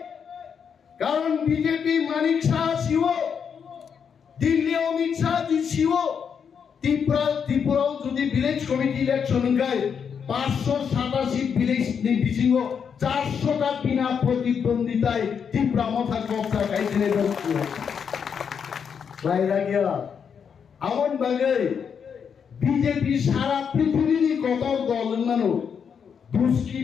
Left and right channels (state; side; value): quieter; right; 7.0 dB